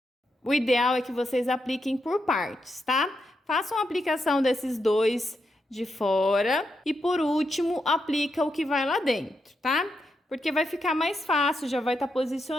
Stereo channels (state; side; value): normal; both; correlation 0.83